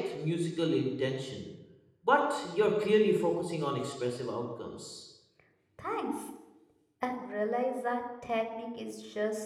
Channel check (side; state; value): both; identical; correlation 1.00